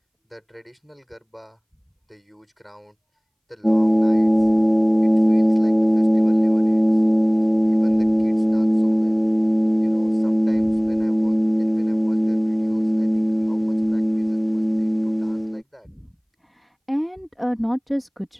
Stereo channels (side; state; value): both; identical; correlation 1.00